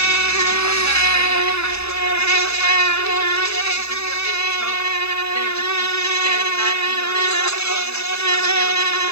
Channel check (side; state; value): right; late; 0.79 ms